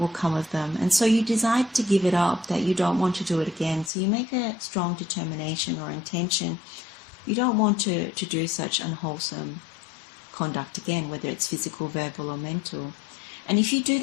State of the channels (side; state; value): right; drops out; at 3.9 s